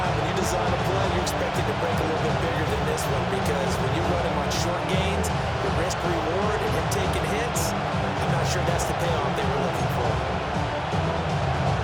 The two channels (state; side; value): identical; both; correlation 1.00